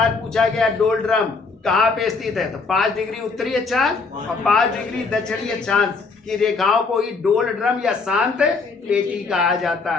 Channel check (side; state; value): right; quieter; 4.3 dB